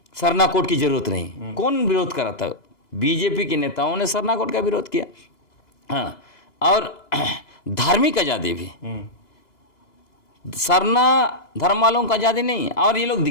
सरना कोड की जरूरत नहीं। कौन विरोध करा था? बीजेपी के नेताओं ने सरना कोड का विरोध किया। हाँ, और धार्मिक आज़ादी भी, सरना धर्म वालों का आज़ादी नहीं। और ये लोग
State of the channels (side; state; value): right; late; 2.9 ms